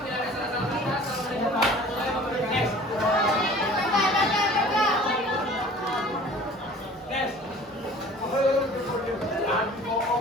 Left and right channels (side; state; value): both; normal; correlation 0.47